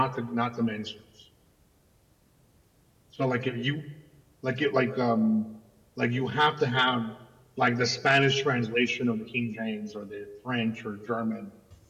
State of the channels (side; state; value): both; identical; correlation 1.00